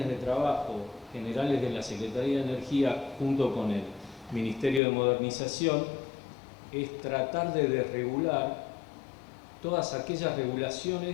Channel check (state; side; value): drops out; right; at 4.8 s